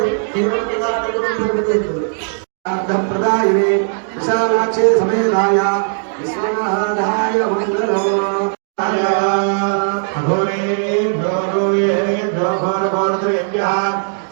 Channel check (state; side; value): silent; left; 66 dB below the other